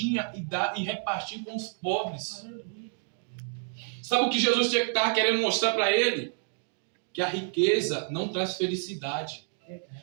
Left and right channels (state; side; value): silent; left; 57 dB below the other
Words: e dar e repartir com os pobres. Sabe o que Jesus estava querendo mostrar para ele? Que a riqueza não traz felicidade.